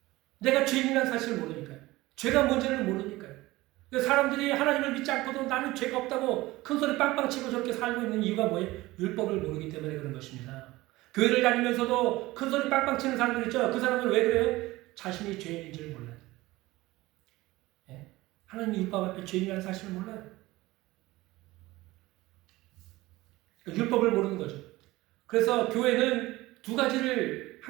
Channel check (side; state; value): left; quieter; 19.1 dB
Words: 내가 죄인이라는 사실을 모르니까요. 죄가 뭔지를 모르니까요. 사람들이 하나님을 믿지 않고도 나는 죄가 없다고 큰소리 빵빵 치고 저렇게 살고 있는 이유가 뭐예요? 율법을 모르기 때문에 그런 것입니다. 교회를 다니면서도 큰소리 빵빵 치는 사람들 있죠? 그 사람들 왜 그래요? 자신이 죄인인지를 몰라요. 예? 하나님 율법 앞에 죄인이라는 사실을 몰라요. 그러니까 율법을 모르는 거죠. 그래서 교회는 두 가지를